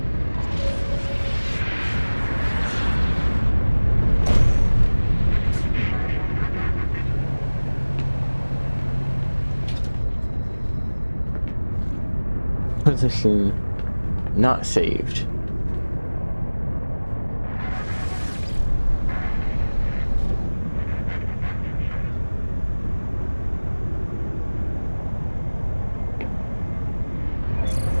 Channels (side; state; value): both; inverted; correlation -1.00